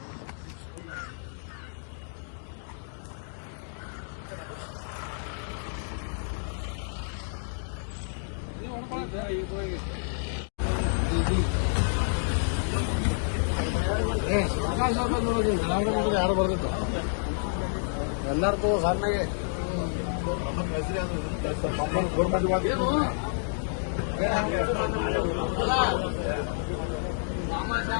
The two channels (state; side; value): silent; right; digital silence